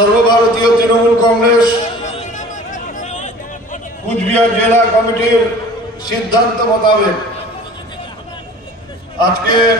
তৃণমূল কংগ্রেস কুচবিহার জেলা কমিটির সিদ্ধান্ত মোতাবেক আজকে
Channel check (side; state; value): both; normal; correlation 0.45